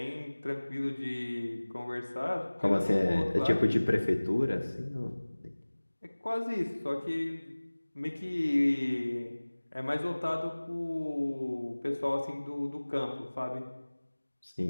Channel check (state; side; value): inverted; both; correlation -1.00